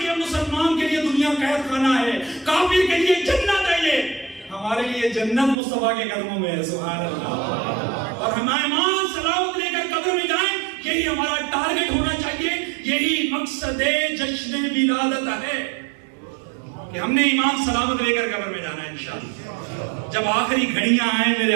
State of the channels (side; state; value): left; drops out; at 5.6 s